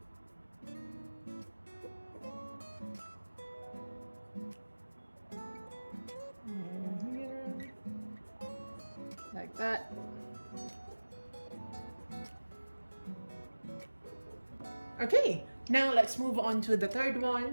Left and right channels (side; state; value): both; inverted; correlation -1.00